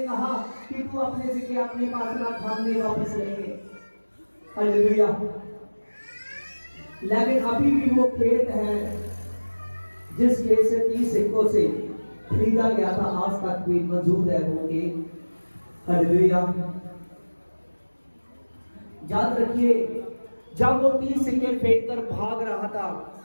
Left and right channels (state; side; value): inverted; both; correlation -1.00